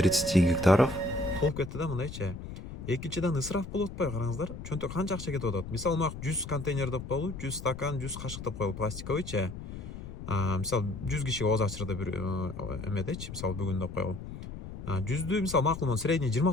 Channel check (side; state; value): left; noise; rumble, 10 dB below the sound